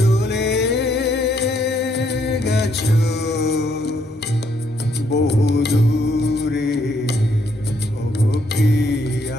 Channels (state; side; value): normal; both; correlation 0.71